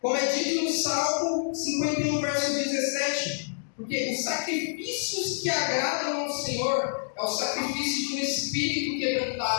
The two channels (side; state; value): right; silent; digital silence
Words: como é dito no Salmo 51, verso 17, porque os sacrifícios que agradam ao Senhor é o sacrifício de um espírito